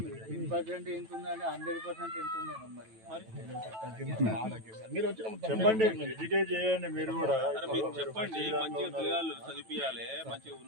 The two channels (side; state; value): left; late; 9.1 ms